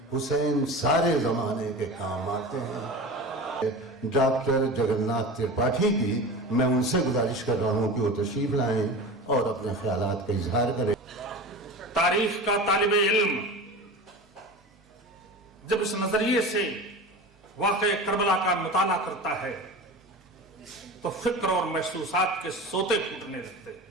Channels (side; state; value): both; normal; correlation 0.32